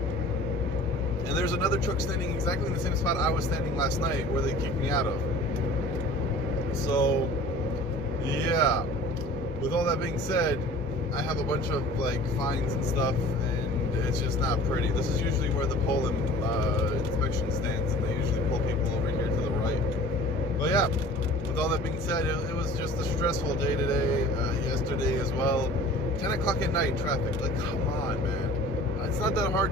And there's another truck standing exactly in the same spot I was standing last night where they kicked me out of. So, yeah. With all that being said, I have a bunch of like fines and stuff, and it's just not pretty. This is usually where the Poland inspection stands, and they usually pull people over here to the right. But yeah, with all that being said, it was just a stressful day today, yesterday as well. 10 o'clock at night traffic, like come on, man. It's not that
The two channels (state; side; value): normal; both; correlation 0.44